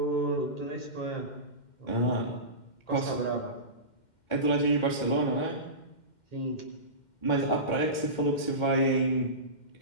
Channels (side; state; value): right; late; 2.1 ms